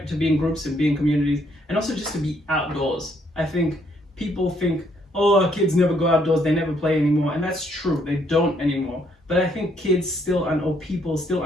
To be in groups and be in communities, and also just to be outdoors. I think people think, oh, kids never go outdoors, they never play anymore, and that's true. They don't anymore. But I think kids still or people still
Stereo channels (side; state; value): both; normal; correlation 0.70